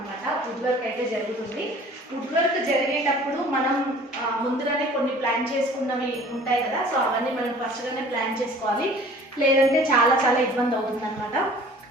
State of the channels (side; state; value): both; normal; correlation 0.49